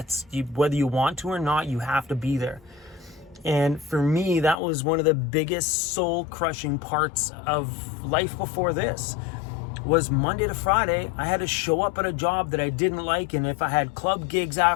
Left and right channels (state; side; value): drops out; right; at 4.5 s